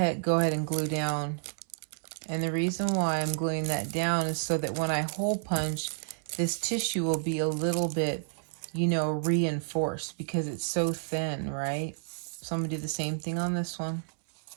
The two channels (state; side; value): silent; left; 58 dB below the other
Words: go ahead and glue down. And the reason why I'm gluing that down is so that when I hole punch, this tissue will be a little bit, you know, reinforced because it's so thin, right? So I'm going to do the same thing on this one.